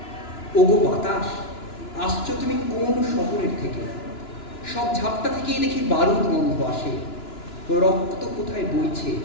ওগো বাতাস, আসছো তুমি কোন শহরের থেকে? সব ঝাপটা থেকেই দেখি বারুদ গন্ধ আসে, রক্ত কোথায় বইছে।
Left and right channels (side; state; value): right; late; 2.9 ms